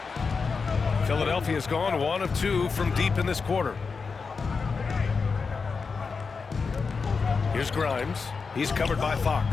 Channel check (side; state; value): right; quieter; 5.0 dB